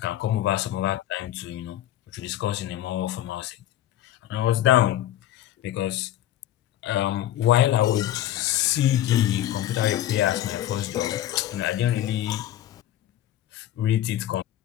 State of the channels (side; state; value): right; quieter; 12.7 dB